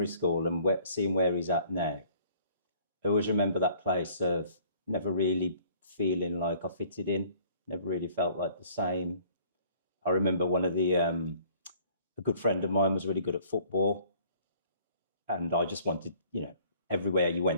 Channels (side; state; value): both; inverted; correlation -0.57